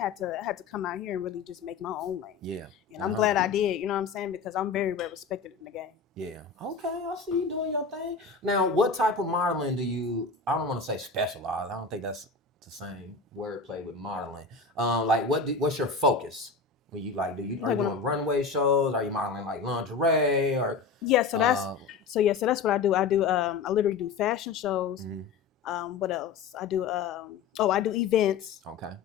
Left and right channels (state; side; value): quieter; right; 5.0 dB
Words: to come out here and really just make my own lane. Yeah. And I'm glad I did, you know what I'm saying? Because I'm very, very respected in the game. Yeah. Okay, I see you doing your thing. Now, what type of modeling do you, I don't want to say specialize. I don't think that's the same wordplay with modeling. Like what's your focus when you are you doing runway shows? Are you modeling like lingerie or? Yeah, so that's what I do. I literally do fashion shows. What else? I do I do events. Okay.